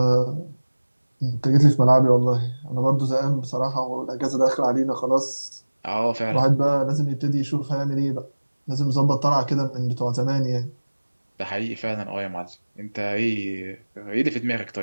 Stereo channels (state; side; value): inverted; both; correlation -1.00